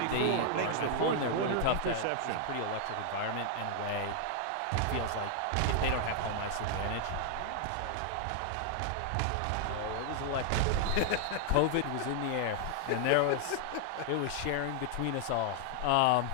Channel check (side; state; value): both; different; correlation 0.00